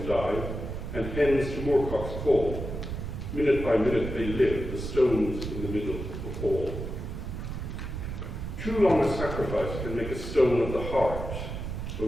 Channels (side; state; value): right; noise; rumble, 6 dB below the sound